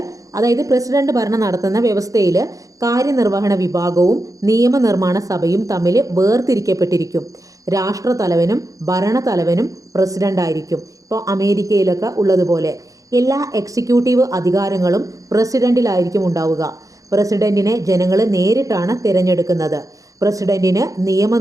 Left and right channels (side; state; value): left; late; 0.17 ms